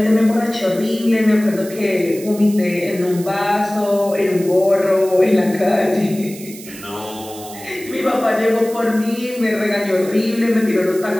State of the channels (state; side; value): noise; right; hiss, 16 dB below the sound